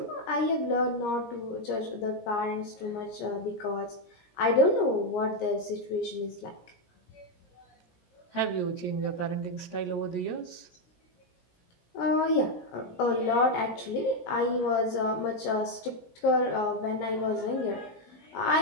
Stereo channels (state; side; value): late; right; 17 ms